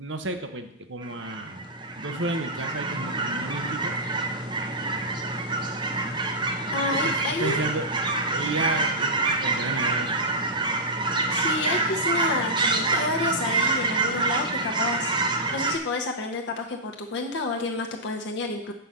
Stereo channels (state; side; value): normal; both; correlation -0.12